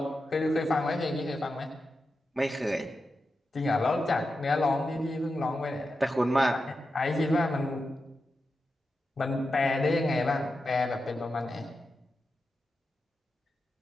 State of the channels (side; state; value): both; normal; correlation 0.89